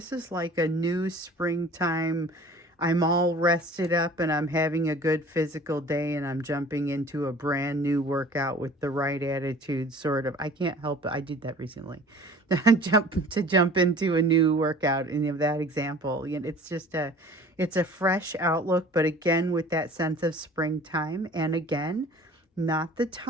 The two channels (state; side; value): normal; both; correlation 0.46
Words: is like a new springtime. I'm all rested up and I'm having a good physical day and I'm jumping into a brand new workout with the right attitude, sort of. I can't help it. I did that recently. jump into a new workout, and of that example. It's just it's a fresh outlook, but again, with that sense of springtime. And again, not the